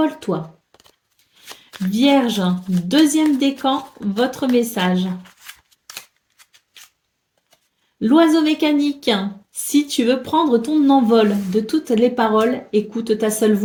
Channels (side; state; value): both; identical; correlation 1.00